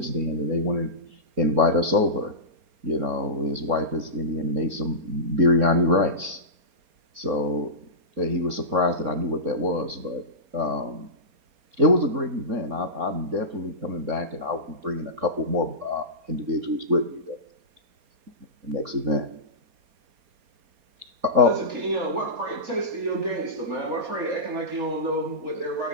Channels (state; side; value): late; left; 4.3 ms